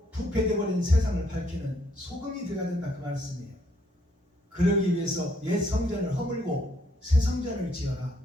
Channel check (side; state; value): both; normal; correlation 0.69